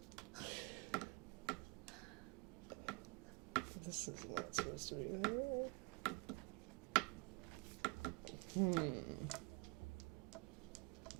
This is not supposed to be there.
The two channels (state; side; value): quieter; left; 27.9 dB